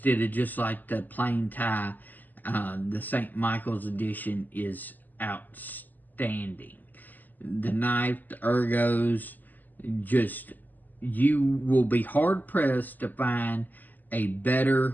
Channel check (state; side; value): late; right; 0.085 ms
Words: of just like the plain tie. The St. Michael's edition is outstanding. The knife, the ergos, just, you will be hard pressed to find a